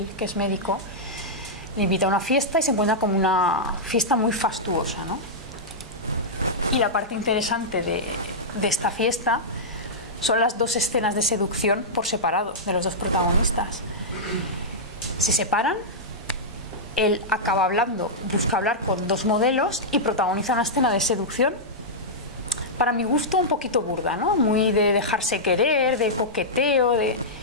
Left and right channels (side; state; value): both; normal; correlation -0.10